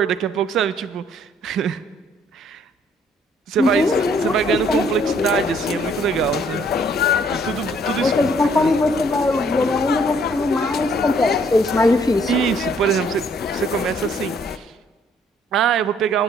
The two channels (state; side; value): normal; both; correlation 0.64